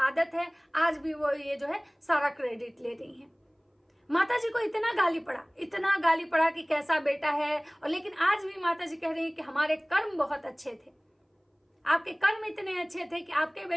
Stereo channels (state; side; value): identical; both; correlation 1.00